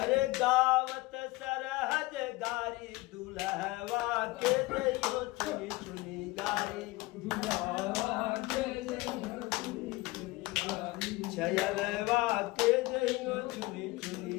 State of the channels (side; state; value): right; quieter; 20.9 dB